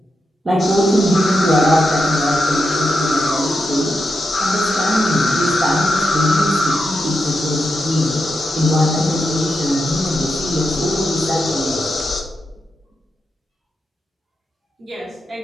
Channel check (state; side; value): normal; both; correlation 0.86